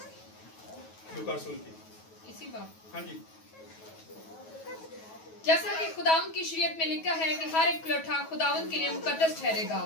लूका रसूल की। इसी बात, हाँ जी। जैसा कि खुदावंद की शरीयत में लिखा है कि हर एक पलोठा खुदावंद के लिए मुकद्दस ठहरेगा।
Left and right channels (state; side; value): late; right; 9.3 ms